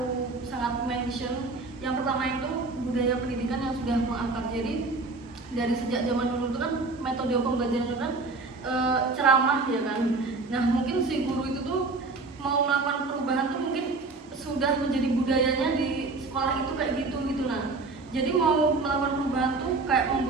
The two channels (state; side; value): quieter; left; 3.7 dB